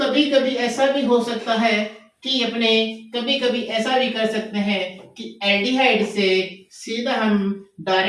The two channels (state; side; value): identical; both; correlation 1.00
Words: कभी ऐसा भी हो सकता है कि अपने, कभी कभी ऐसा भी कर सकते हैं कि एल्डिहाइड से सीधा हम